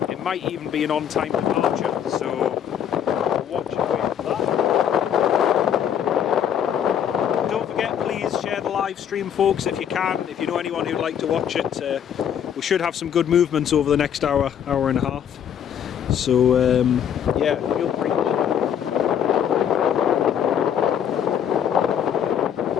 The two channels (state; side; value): quieter; right; 9.0 dB